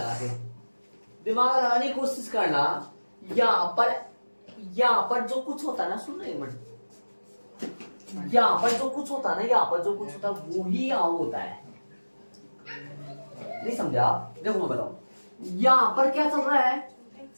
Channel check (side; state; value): both; inverted; correlation -1.00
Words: के दिमाग लगाने की कोशिश करना। यहाँ पर जो कुछ होता है ना, सुनना एक मिनट, यहाँ पर जो कुछ होता है ना, यहाँ पर जो कुछ होता है वो ही यहाँ होता है। नहीं समझा? देखो मैं बताऊं, यहाँ पर क्या चल रहा है,